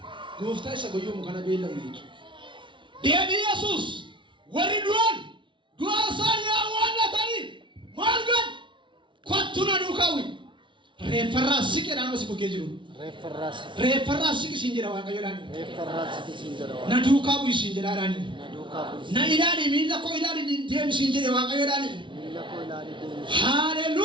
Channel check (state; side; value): late; left; 0.24 ms